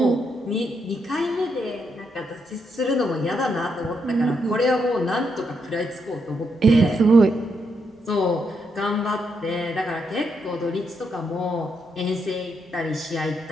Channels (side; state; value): both; normal; correlation 0.79